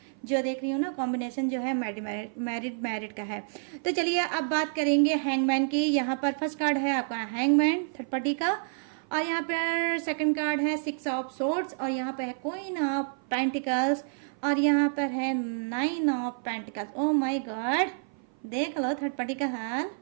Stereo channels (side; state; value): left; silent; 55 dB below the other